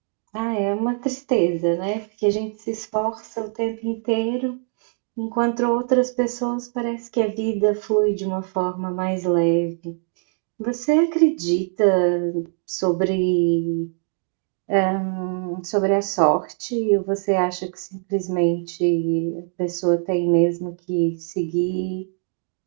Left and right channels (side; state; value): left; silent; 56 dB below the other